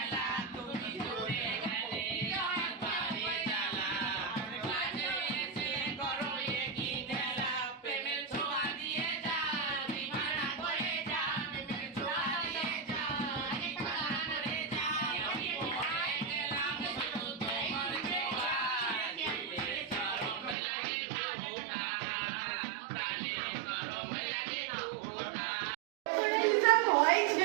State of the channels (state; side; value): drops out; left; at 20.6 s